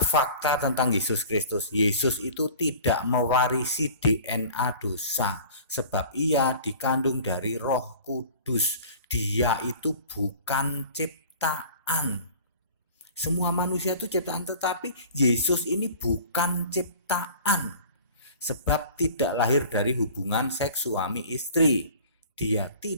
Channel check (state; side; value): inverted; both; correlation -0.44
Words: fakta tentang Yesus Kristus. Yesus itu tidak mewarisi DNA dosa, sebab ia dikandung dari Roh Kudus. Dia itu bukan ciptaan. Semua manusia itu ciptaan, tetapi Yesus ini bukan ciptaan. Sebab tidak lahir dari hubungan seks suami istri. Dia